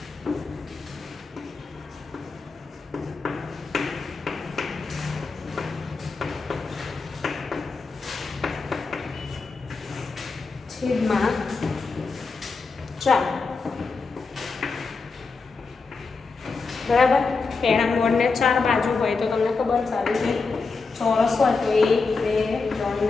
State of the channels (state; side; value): quieter; right; 4.4 dB